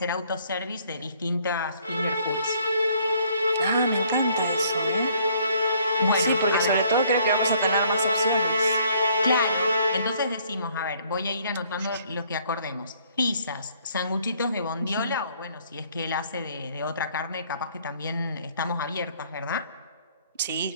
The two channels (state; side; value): inverted; both; correlation -0.63